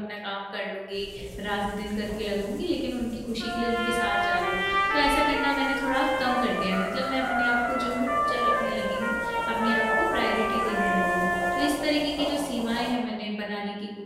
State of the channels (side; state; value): both; identical; correlation 1.00